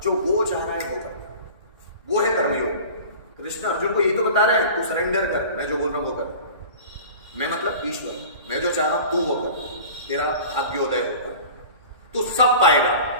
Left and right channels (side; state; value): both; inverted; correlation -0.40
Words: जो वो चाह रहा है वो करना, वो है कर्मयोग। कृष्ण अर्जुन को यही तो बता रहे हैं, तू सरेंडर कर, मैं जो बोल रहा हूं वो कर। मैं मतलब ईश्वर, मैं जो चाह रहा हूं तू वो कर, तेरा भाग्योदय हो, तू सब पाएगा।